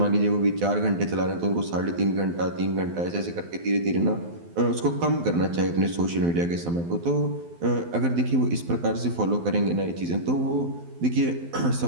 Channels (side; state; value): left; late; 12 ms